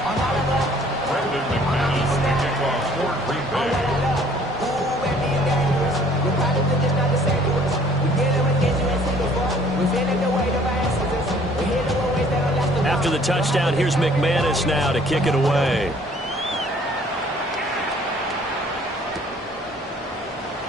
After the touchdown, here's McManus now to kick it away.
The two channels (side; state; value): both; normal; correlation 0.57